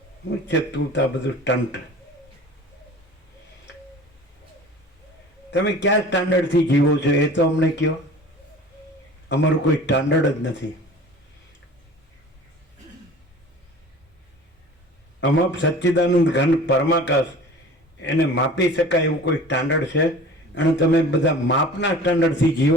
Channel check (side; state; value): both; normal; correlation 0.42